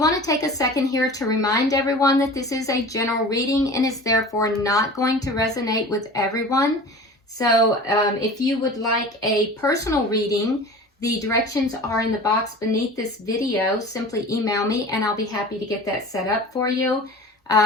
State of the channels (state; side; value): normal; both; correlation 0.38